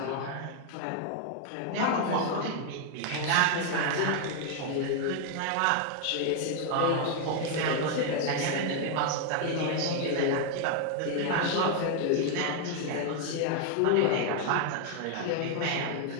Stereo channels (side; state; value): both; different; correlation 0.00